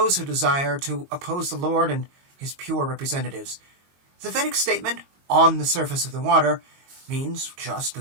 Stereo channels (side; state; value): left; late; 22 ms